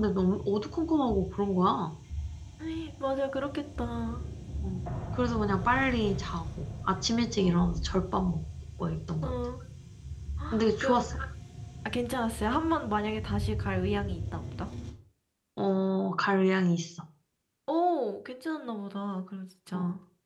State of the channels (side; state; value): both; identical; correlation 1.00